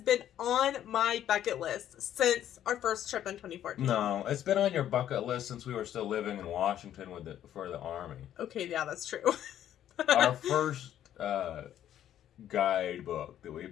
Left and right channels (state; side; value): quieter; right; 11.1 dB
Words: been on my bucket list since our first trip in 2014. No, it's been on your bucket list since we were still living in Washington for the Army. Okay, yeah, that's true. Our first guidebook that we